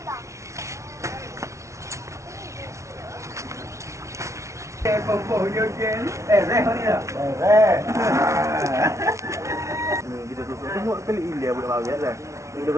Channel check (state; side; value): late; left; 0.14 ms